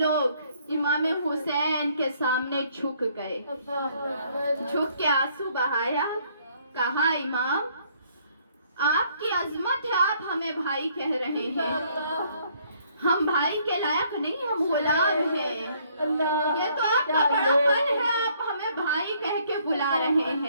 امام حسین کے سامنے جھک گئے، جھک کے آنسو بہایا، کہا امام آپ کی عظمت ہے، آپ ہمیں بھائی کہہ رہے ہیں، ہم بھائی کے لائق نہیں، ہم غلام ہیں، یہ تو آپ کا بڑا پن ہے، آپ ہمیں بھائی کہہ کے بلا رہے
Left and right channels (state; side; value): inverted; both; correlation -0.65